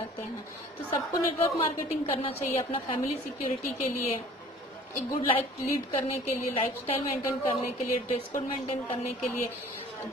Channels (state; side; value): normal; both; correlation 0.50